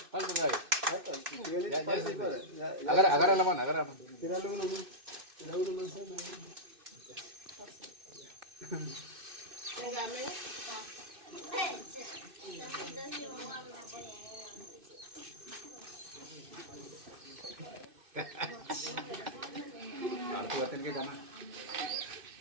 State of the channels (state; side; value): late; left; 2.6 ms